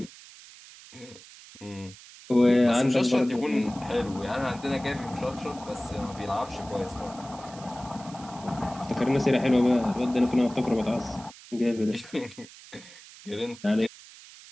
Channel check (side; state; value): right; noise; hiss, 19 dB below the sound